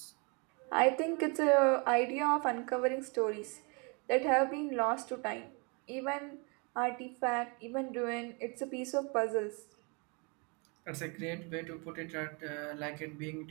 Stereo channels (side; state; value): left; quieter; 32.3 dB